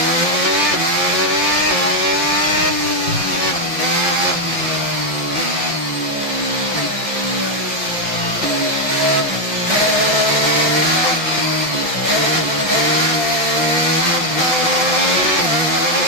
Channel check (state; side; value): late; left; 5.9 ms